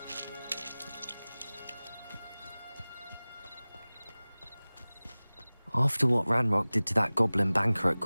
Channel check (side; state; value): both; inverted; correlation -0.99